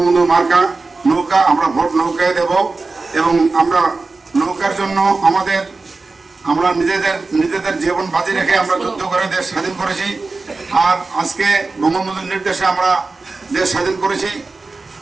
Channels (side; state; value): left; quieter; 3.7 dB